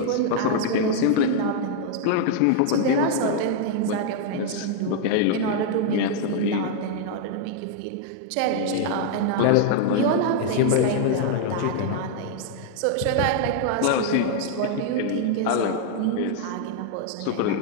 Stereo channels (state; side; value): different; both; correlation 0.00